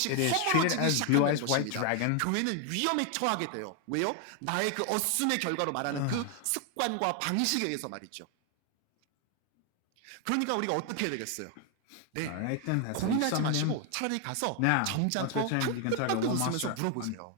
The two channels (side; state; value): both; different; correlation 0.01